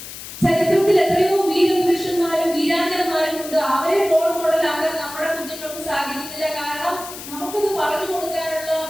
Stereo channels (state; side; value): noise; left; hiss, 12 dB below the sound